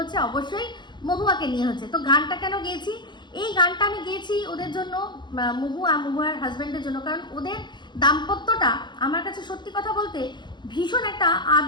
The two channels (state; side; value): late; right; 0.22 ms